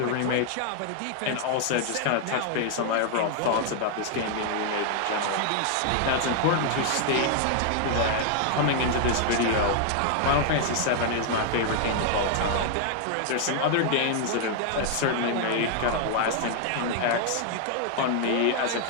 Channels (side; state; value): both; different; correlation 0.00